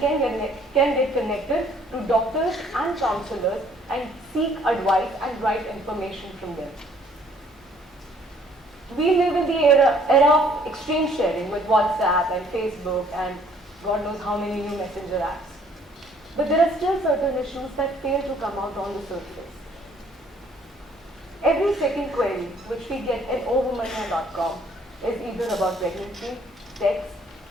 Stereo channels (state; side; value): normal; both; correlation 0.61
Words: connected to doctors and counselors and seek advice and right information from them. We live in the era of extreme sharing with WhatsApp and Facebook and God knows how many new messenger apps. But there are still certain issues that fail to come out on the surface. Every second query which we get at OoWomaniya.com is either about pregnancy, sex,